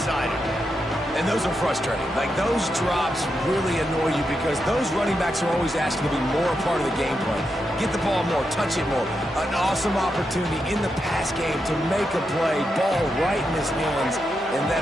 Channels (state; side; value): normal; both; correlation 0.85